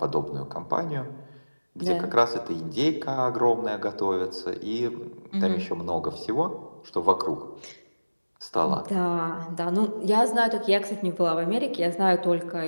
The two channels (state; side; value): inverted; both; correlation -1.00